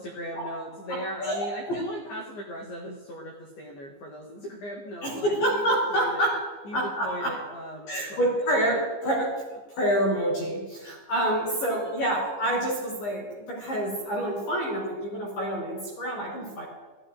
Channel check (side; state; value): right; late; 15 ms